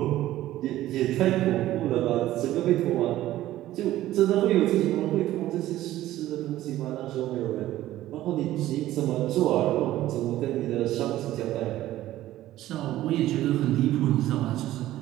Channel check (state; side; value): quieter; left; 14.6 dB